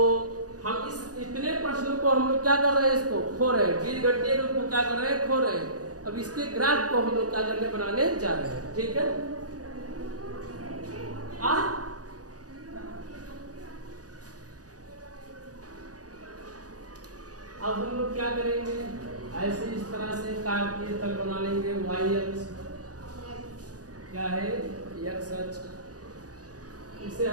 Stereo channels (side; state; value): left; late; 0.67 ms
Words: हम इस इतने प्रश्नों को हम लोग क्या कर रहे हैं, इसको खो रहे हैं, बीजगणितीय रूप को क्या कर रहे हैं, खो रहे हैं। अब इसके ग्राफ को हम लोग क्या करने बनाने जा रहे हैं, ठीक है। अब हम लोग क्या करेंगे, ऐसे इस तरह से कार्तीय तल बना लेंगे, y अक्ष क्या है x अक्ष, इसे